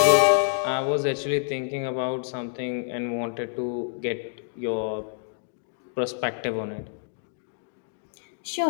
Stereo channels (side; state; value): right; silent; digital silence